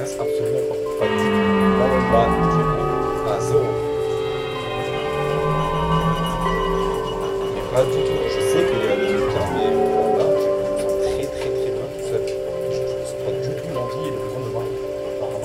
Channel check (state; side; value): identical; both; correlation 1.00